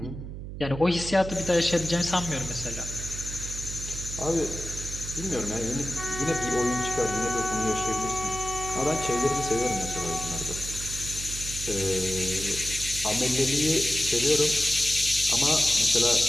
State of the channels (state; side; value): noise; right; hum, 9 dB below the sound